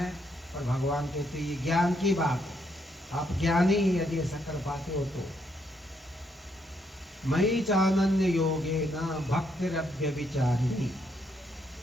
और भगवान कहते हैं ये ज्ञान की बात है। आप ज्ञानी यदि ऐसा कर पाते हो तो। मयि चानन्य योगे न भक्तिरव्यभिचारिणी,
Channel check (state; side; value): normal; both; correlation 0.75